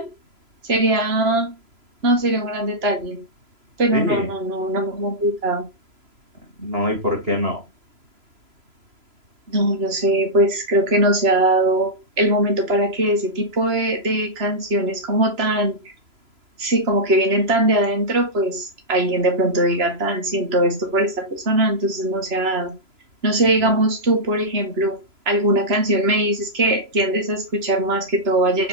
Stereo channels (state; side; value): late; left; 3.0 ms